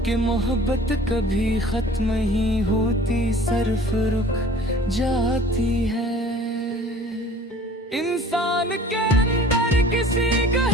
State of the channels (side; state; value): both; normal; correlation 0.48